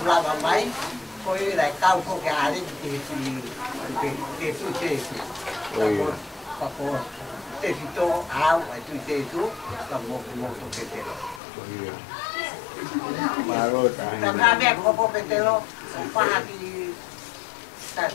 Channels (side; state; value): right; drops out; at 11.4 s